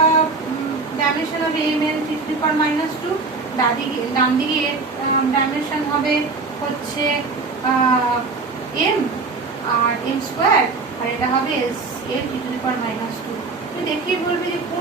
ডাইমেনশন হবে m এর 3⁻², ডান দিকে এর ডাইমেনশন হবে হচ্ছে m আর m², আর এটা হবে এর 3⁻²। তুমি দেখেই বলবে যে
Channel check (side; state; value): left; quieter; 4.1 dB